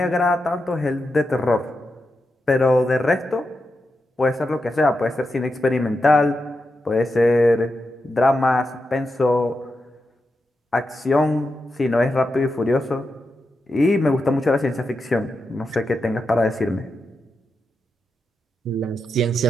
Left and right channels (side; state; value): both; normal; correlation 0.87